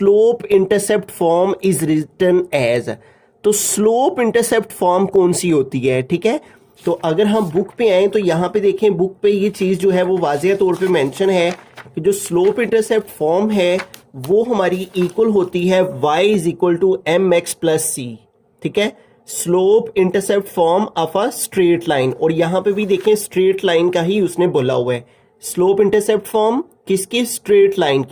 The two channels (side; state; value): both; identical; correlation 1.00